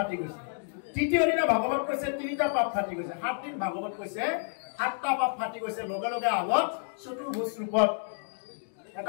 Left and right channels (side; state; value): right; silent; 58 dB below the other